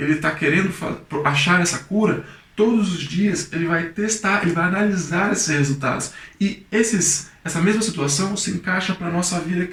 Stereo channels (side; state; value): both; identical; correlation 1.00